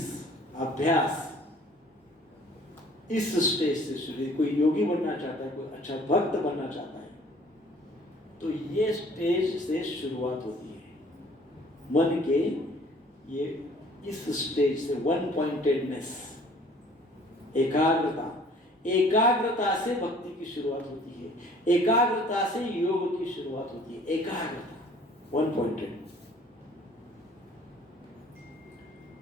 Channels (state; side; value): normal; both; correlation 0.54